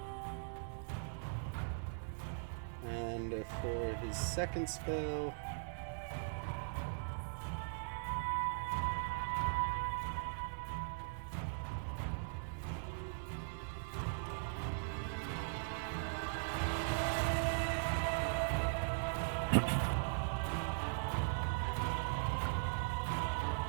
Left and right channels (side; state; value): left; silent; digital silence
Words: and for his second spell...